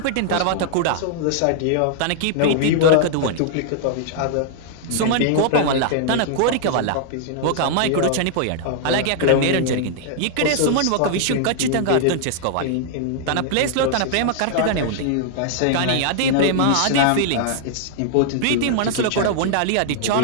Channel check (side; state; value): both; different; correlation -0.01